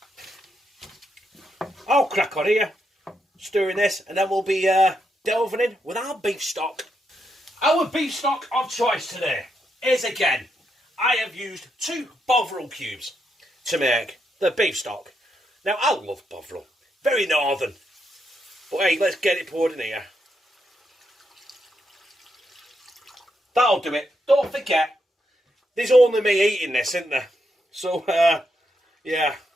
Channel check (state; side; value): normal; both; correlation 0.81